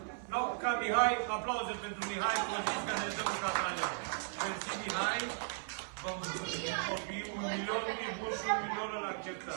No, ca Mihai, aplauze pentru Mihai, vă zic că ne dă un catralion. Mersi, Mihai. Vă mulțumim, copii, 1 milion, e bun și 1 milion îl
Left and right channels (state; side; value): silent; left; 53 dB below the other